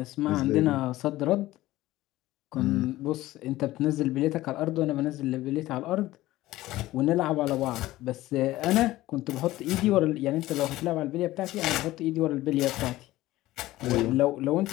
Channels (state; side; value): quieter; right; 16.7 dB